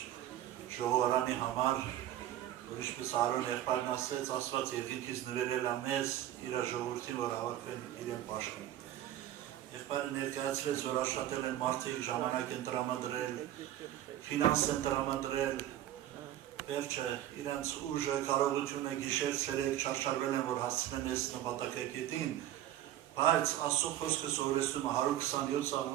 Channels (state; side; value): quieter; left; 12.7 dB